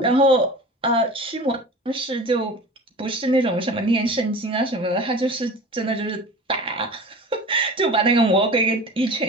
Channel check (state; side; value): normal; both; correlation 0.37